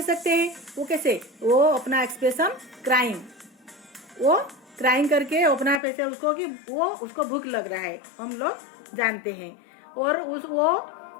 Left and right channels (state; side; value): drops out; right; at 5.8 s